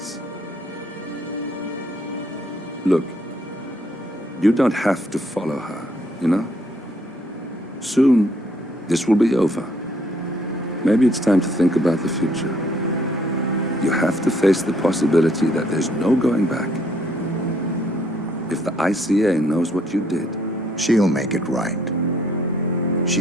Look, you don't have to follow her, you know? Soon, this will be over. Maybe it's time to think about the future. You have to face the possibility that there's no going back. If the ICA knows what you did, she'll make it right.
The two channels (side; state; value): both; normal; correlation 0.66